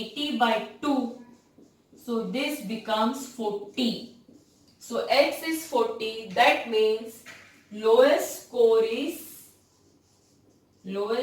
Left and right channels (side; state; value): both; identical; correlation 1.00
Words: by 2. So this becomes 40. So x is 40. That means lowest score is